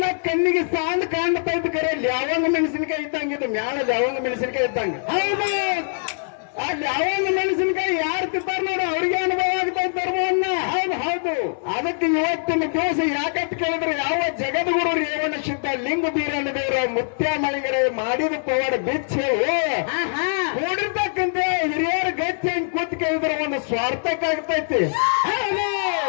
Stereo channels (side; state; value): right; silent; 62 dB below the other